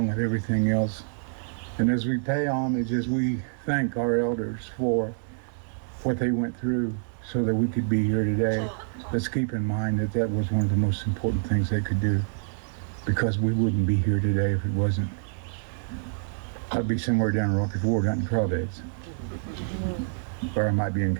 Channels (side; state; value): left; silent; 60 dB below the other